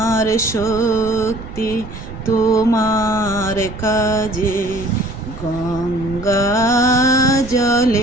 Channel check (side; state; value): right; noise; rumble, 12 dB below the sound